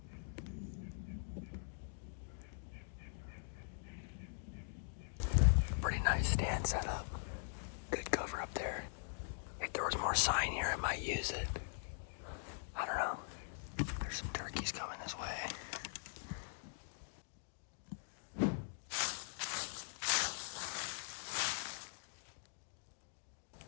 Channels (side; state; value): right; silent; digital silence